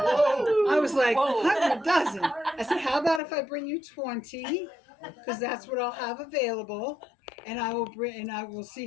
was like, 100 dozen. I said, how about if I bring you 20? Because that's what I'll have available. And I will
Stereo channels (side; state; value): right; drops out; at 3.2 s